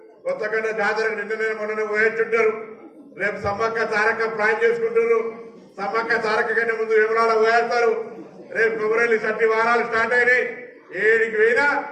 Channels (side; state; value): both; identical; correlation 1.00